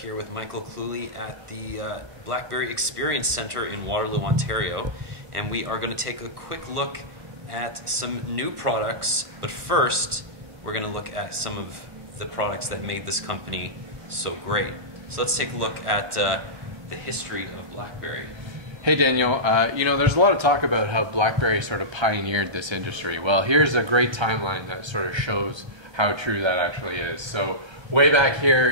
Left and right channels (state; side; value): late; left; 1.2 ms